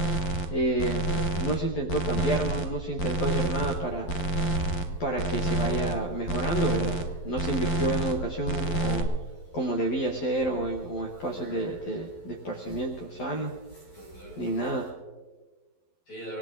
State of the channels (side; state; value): right; late; 11 ms